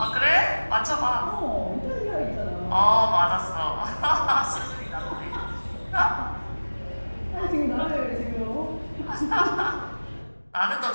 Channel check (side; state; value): both; inverted; correlation -1.00